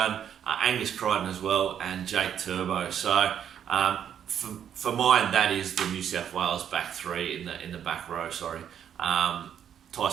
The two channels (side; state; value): left; quieter; 9.1 dB